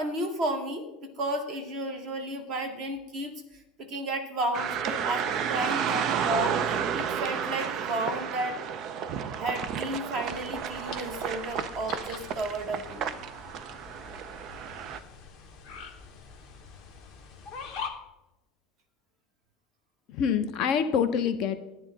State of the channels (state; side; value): normal; both; correlation 0.32